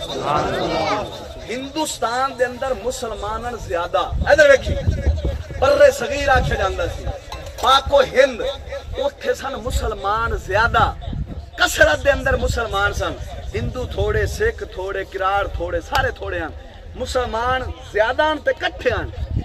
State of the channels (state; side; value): identical; both; correlation 1.00